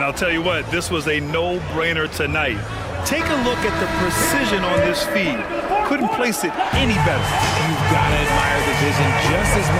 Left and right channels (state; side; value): identical; both; correlation 1.00